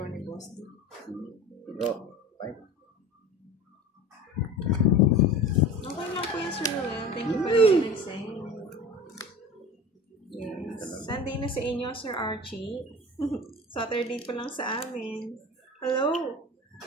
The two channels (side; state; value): both; normal; correlation 0.35